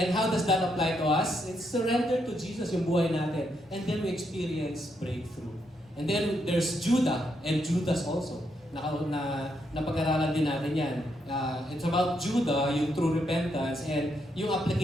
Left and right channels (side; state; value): both; normal; correlation 0.78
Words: how does that apply to us? It's surrender to Jesus yung buhay natin. And then we experience breakthrough. And then there's Judah and Judas also. Napag-aralan din natin yan. It's about Judah, yung true repentance, and yung